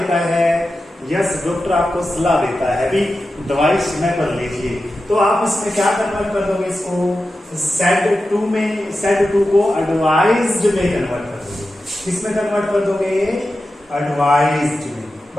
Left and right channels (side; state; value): both; normal; correlation 0.92